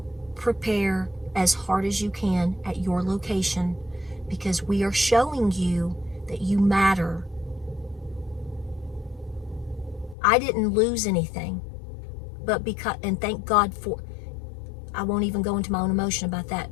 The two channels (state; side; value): drops out; right; at 10.2 s